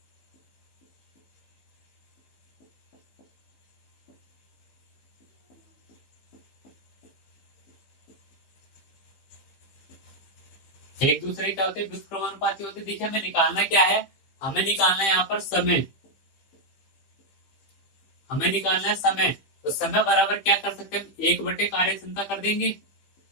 एक दूसरे क्या होते हैं, व्युत्क्रमानुपाती होते हैं। देखिए हमें निकालना क्या है, हमें निकालना है यहाँ पर समय, हमें निकालना है समय। तो समय बराबर क्या कर सकते हैं, 1 बटे कार्य क्षमता कर देंगे,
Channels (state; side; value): late; right; 15 ms